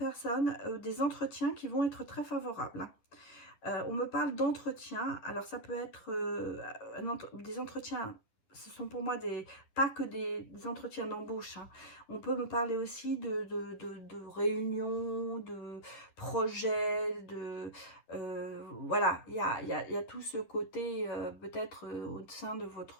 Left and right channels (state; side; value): late; right; 11 ms